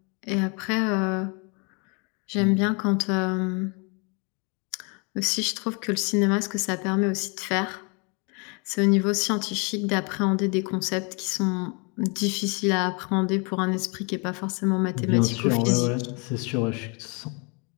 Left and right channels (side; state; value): right; quieter; 33.3 dB